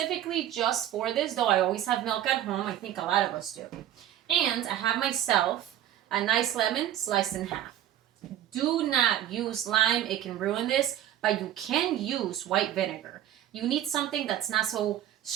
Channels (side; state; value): left; quieter; 11.7 dB